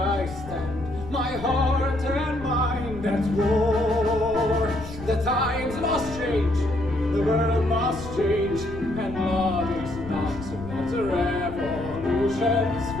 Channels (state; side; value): noise; left; rumble, 12 dB below the sound